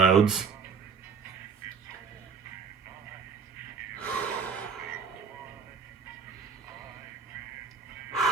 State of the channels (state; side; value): quieter; left; 5.8 dB